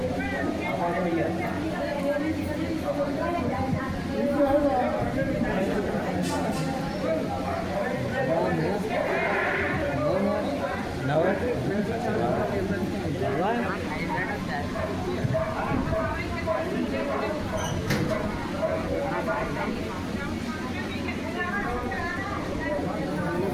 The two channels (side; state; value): both; identical; correlation 1.00